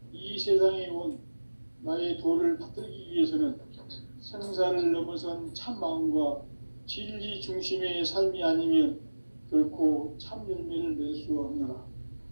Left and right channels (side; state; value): both; inverted; correlation -1.00